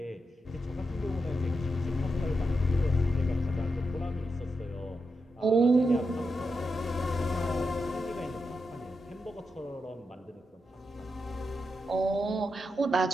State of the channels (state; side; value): normal; both; correlation 0.86